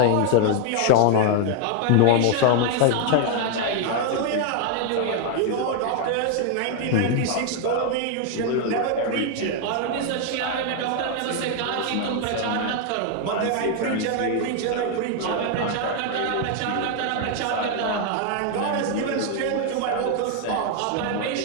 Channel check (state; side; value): different; both; correlation 0.00